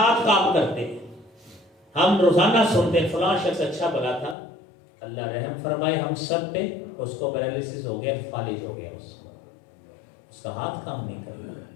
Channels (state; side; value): drops out; right; at 4.4 s